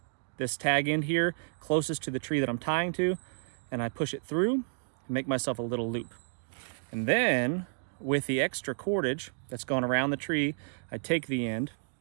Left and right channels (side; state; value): left; silent; digital silence